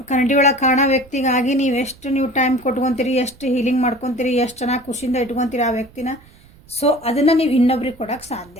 ಕನ್ನಡಿ ಒಳಗೆ ಕಾಣೋ ವ್ಯಕ್ತಿಗಾಗಿ ನೀವು ಟೈಮ್ ಕೊಟ್ಕೊತೀರಿ, ಎಷ್ಟು ಹೀಲಿಂಗ್ ಮಾಡ್ಕೊತೀರಿ, ಎಷ್ಟು ಚೆನ್ನಾಗಿ ಖುಷಿಯಿಂದ ಇಟ್ಕೊತೀರಿ ಆ ವ್ಯಕ್ತಿನ. ಸೊ ಅದನ್ನು ನೀವು ಇನ್ನೊಬ್ರಿಗೆ ಕೊಡೋಕ್ಕೆ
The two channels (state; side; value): noise; right; rumble, 26 dB below the sound